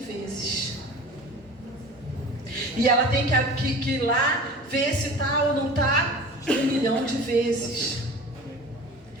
vezes. E ela tem que ir lá ver se está ou não está 1 milhão de vezes.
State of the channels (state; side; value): normal; both; correlation 0.38